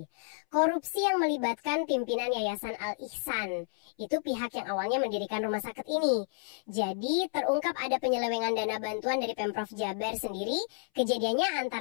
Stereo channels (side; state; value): right; silent; 57 dB below the other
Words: Korupsi yang melibatkan pimpinan Yayasan Al Ihsan. Itu pihak yang awalnya mendirikan rumah sakit ini. Jadi terungkap ada penyelewengan dana bantuan dari Pemprov Jabar sendiri. Kejadiannya